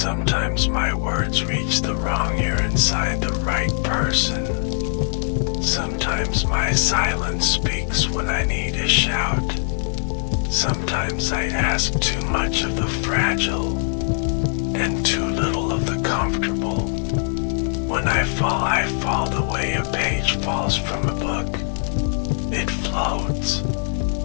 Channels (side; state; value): right; silent; digital silence